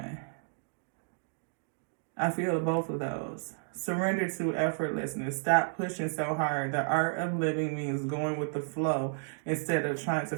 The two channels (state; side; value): silent; left; digital silence